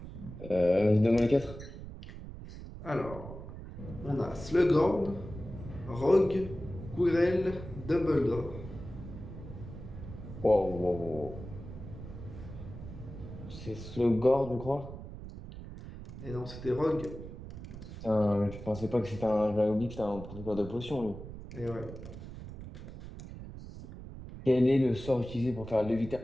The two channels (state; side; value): noise; right; rumble, 12 dB below the sound